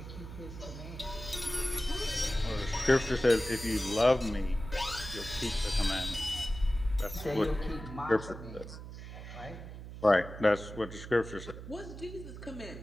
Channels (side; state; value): right; noise; hum, 11 dB below the sound